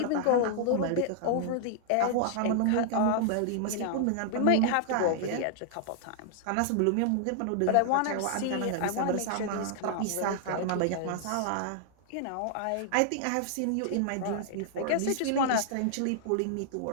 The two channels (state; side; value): different; both; correlation -0.01